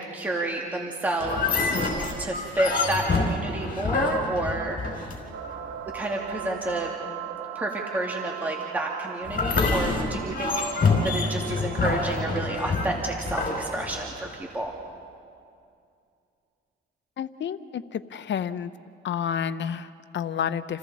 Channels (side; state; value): both; normal; correlation 0.44